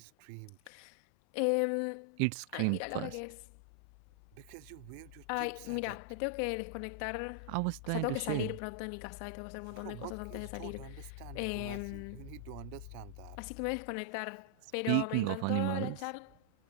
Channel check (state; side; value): different; both; correlation -0.01